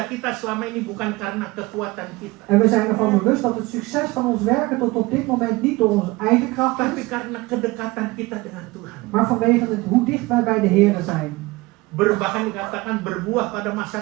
kita selama ini bukan karena kekuatan kita, En we zijn ervan bewust dat het succes van ons werken tot op dit moment niet door onze eigen kracht tapi is, karena kedekatan kita dengan Tuhan. maar vanwege het hoe dicht wij bij de Heer zijn. Bahkan dikatakan berbuah pada masa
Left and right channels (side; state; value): left; quieter; 22.0 dB